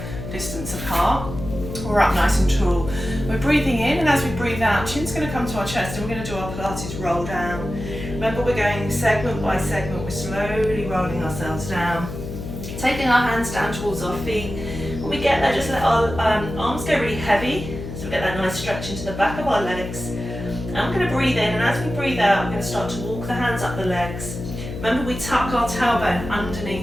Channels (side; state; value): left; noise; hum, 9 dB below the sound